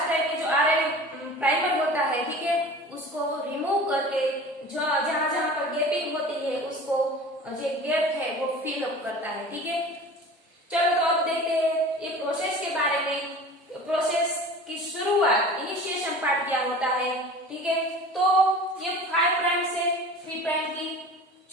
टाइप के जो आरएनए प्राइमर होता है, ठीक है, उसको रिमूव करके जो जहां जहां पर गैपिंग होती है उसको जो गैप है वो फिल अप करता है, ठीक है। चलो तो अब देखते हैं ये प्रोसेस के बारे में। प्रोसेस की शुरुआत, इनिशिएशन पार्ट क्या होता है, ठीक है। तो ये 5 प्राइम से 3 प्राइम की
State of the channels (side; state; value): both; normal; correlation 0.39